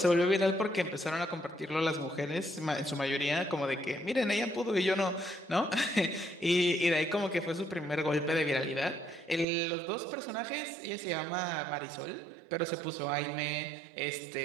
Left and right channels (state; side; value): drops out; left; at 9.5 s